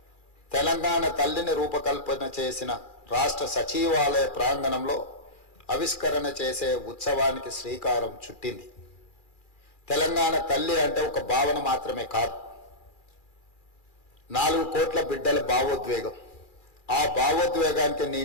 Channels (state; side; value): late; right; 2.4 ms